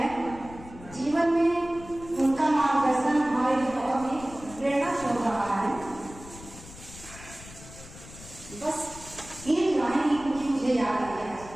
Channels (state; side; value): noise; left; rumble, 17 dB below the sound